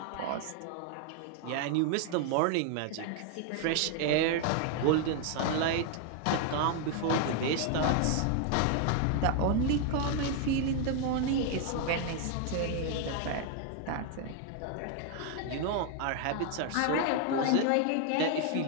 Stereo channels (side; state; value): both; different; correlation 0.00